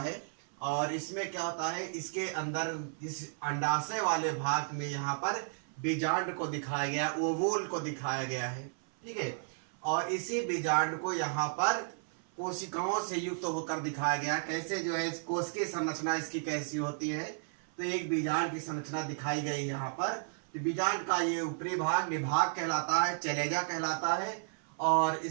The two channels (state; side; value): silent; left; 55 dB below the other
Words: और इसमें क्या होता है, इसके अंदर इस अंडाशय वाले भाग में यहाँ पर बीजांड को दिखाया गया, ओवूल को दिखाया गया है। ठीक है, और इसी बीजांड को यहाँ पर कोशिकाओं से युक्त होकर दिखाया गया। कैसे जो है कोश की संरचना इसकी कैसी होती है, तो एक बीजांड की संरचना दिखाई गई यहाँ पर। तो बीजांड का ये ऊपरी भाग निभाग कहलाता है, चलेजा कहलाता है, और